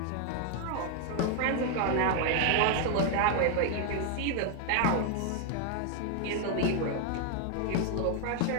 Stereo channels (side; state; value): both; different; correlation 0.00